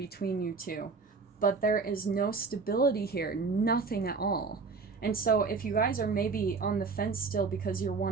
you two, but there is no stability here, nothing at all. And so if you guys are maybe on the fence still because you're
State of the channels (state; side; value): quieter; left; 4.6 dB